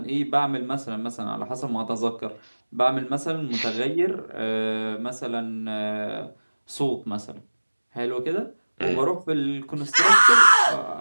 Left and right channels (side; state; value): both; inverted; correlation -1.00